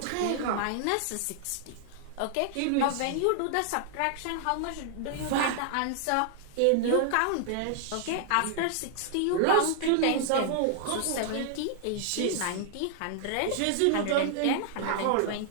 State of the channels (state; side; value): different; both; correlation 0.00